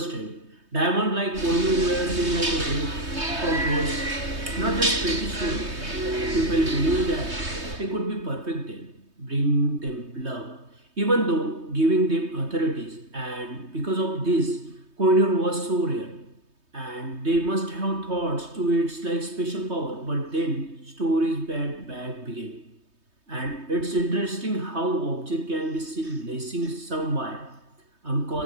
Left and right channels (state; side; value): late; left; 3.2 ms